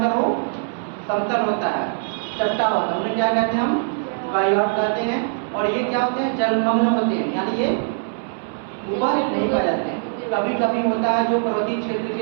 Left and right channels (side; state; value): left; silent; 61 dB below the other